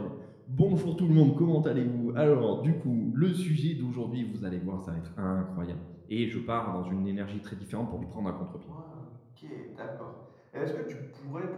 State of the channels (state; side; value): identical; both; correlation 1.00